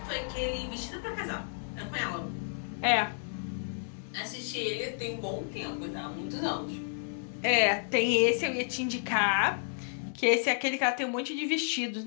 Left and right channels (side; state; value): right; silent; digital silence